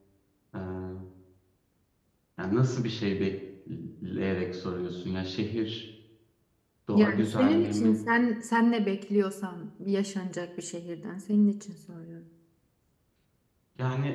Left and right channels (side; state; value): both; identical; correlation 1.00